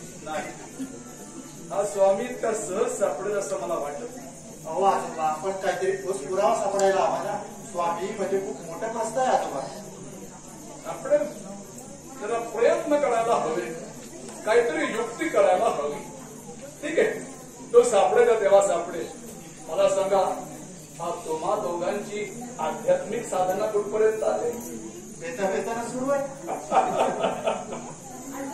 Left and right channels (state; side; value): identical; both; correlation 1.00